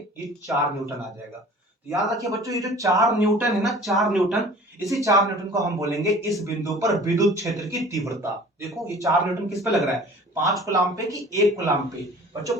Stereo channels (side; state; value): both; normal; correlation 0.46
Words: ये 4 न्यूटन आ जाएगा। तो याद रखिए बच्चों, ये जो 4 न्यूटन है ना, 4 न्यूटन, इसी 4 न्यूटन को हम बोलेंगे इस बिंदु पर विद्युत क्षेत्र की तीव्रता। देखो ये 4 न्यूटन किस पे लग रहा है, 5 कूलाम पे कि 1 कूलाम पे। बच्चों